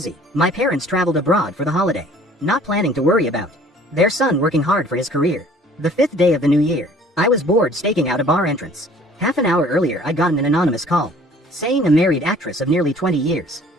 My parents traveled abroad for the holiday, not planning to worry about their son working hard for his career. The 5th day of the new year, I was bored staking out a bar entrance. Half an hour earlier I'd gotten an anonymous call, saying a married actress of nearly 20 years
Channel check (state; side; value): normal; both; correlation 0.53